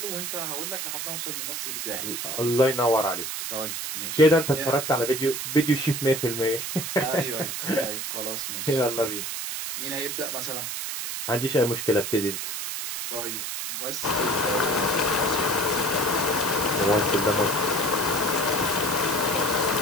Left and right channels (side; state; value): right; noise; hiss, 4 dB below the sound